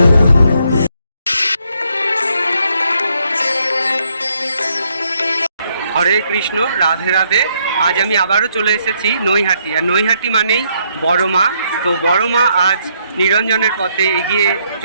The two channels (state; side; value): inverted; both; correlation -0.73